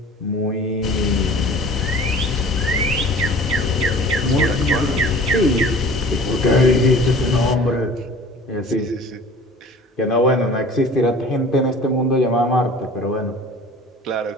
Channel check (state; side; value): normal; both; correlation 0.45